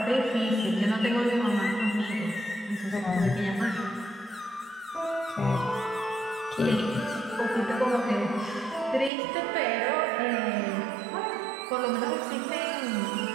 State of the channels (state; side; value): drops out; left; at 9.1 s